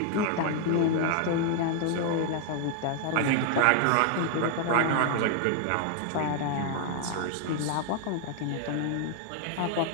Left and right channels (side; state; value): both; different; correlation 0.00